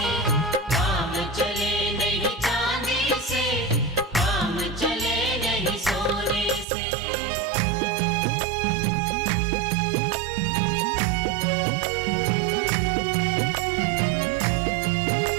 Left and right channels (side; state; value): left; drops out; at 6.7 s